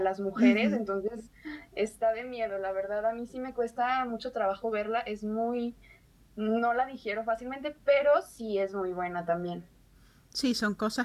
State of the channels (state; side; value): identical; both; correlation 1.00